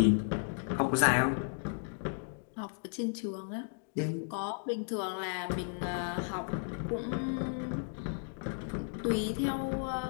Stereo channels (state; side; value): silent; right; digital silence